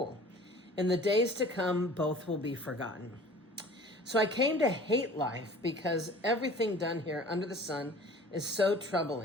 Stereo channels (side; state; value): both; normal; correlation 0.46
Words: In the days to come, both will be forgotten. So I came to hate life because everything done here under the sun is so